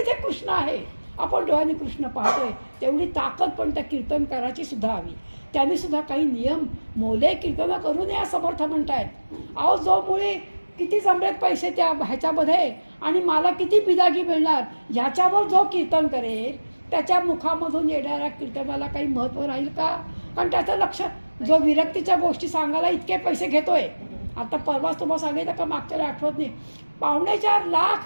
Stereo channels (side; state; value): both; inverted; correlation -1.00